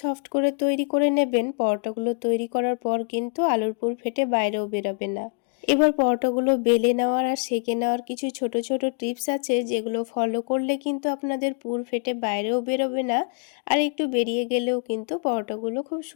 সফট করে তৈরি করে নেবেন, পরোটাগুলো তৈরি করার পর কিন্তু আলুর পুর ফেটে বাইরেও বেরোবে না। এবার পরোটাগুলো বেলে নেওয়ার আর সেঁকে নেওয়ার কিছু ছোট ছোট টিপস আছে, যেগুলো ফলো করলে কিন্তু আপনাদের পুর ফেটে বাইরেও বেরোবে না, আর একটু বেরিয়ে গেলেও কিন্তু পরোটাগুলো খুব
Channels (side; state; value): right; quieter; 38.8 dB